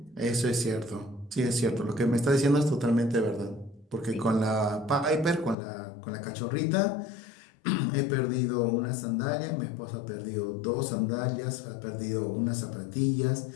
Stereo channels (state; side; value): drops out; right; at 5.6 s